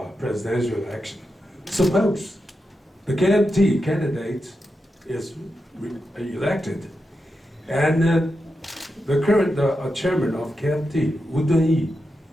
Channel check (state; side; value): normal; both; correlation 0.88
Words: presidential election. Suppose the KMT candidate is elected and the current chairman of KMT, Wu Dunyi,